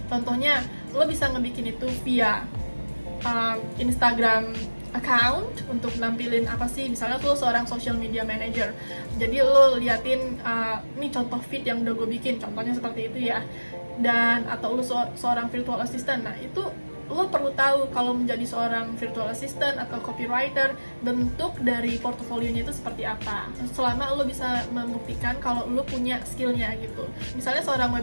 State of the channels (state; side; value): inverted; both; correlation -1.00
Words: Contohnya lo bisa ngebikin itu via Instagram account untuk nampilin apa sih, misalnya lo seorang social media manager, jadi lo liatin ini contoh feed yang udah gue bikin, contohnya seperti itu ya. Dan atau lo seorang virtual assistant, nah itu lo perlu tahu kalau menjadi seorang virtual assistant atau copywriter, bentuk dari portofolionya itu seperti apa, selama lo bisa membuktikan kalau lo punya skillnya gitu. Misalnya seorang